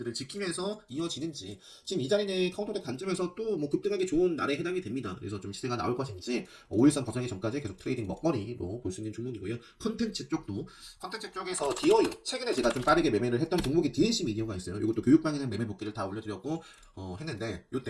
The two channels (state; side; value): identical; both; correlation 1.00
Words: 지키면서 이어지는지 지금 이 자리는 카운터덱 관점에서 또 뭐 급등하기 좋은 날에 해당이 됩니다. 그래서 좀 시세가 나올 것인지 5일선 벗어나기 전까지 계속 트레이딩 먹거리로 볼 수 있는 종목이고요. 컨텐츠 쪽에서 디어유 최근에 제가 좀 빠르게 매매를 했던 종목이 DNC 미디어가 있어요. 이것도 교육방에는 매매 복귀를 다 올려드렸고 했는데